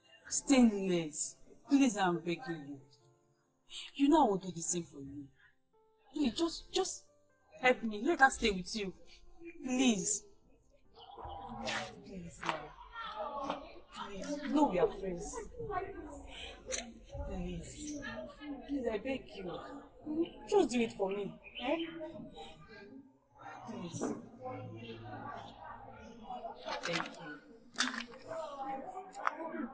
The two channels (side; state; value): both; identical; correlation 1.00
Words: Stainless, please, I'm begging you. You know I will do the same for you. Please, just help me. Let her stay with you. Please. Please, now. Please, no, we are friends. Please. Please, I beg you. Just do it for me. Eh? Please. Thank you.